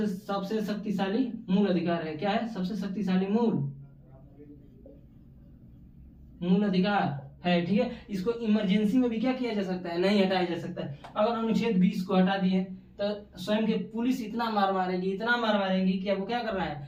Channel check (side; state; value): both; identical; correlation 1.00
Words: मूल अधिकार है। क्या है? सबसे शक्तिशाली मूल अधिकार है, ठीक है। इसको इमरजेंसी में भी क्या किया जा सकता है? नहीं हटाया जा सकता है। अगर अनुच्छेद 20 को हटा दिए तो स्वयं के पुलिस इतना मार मारेगी कि आपको क्या करना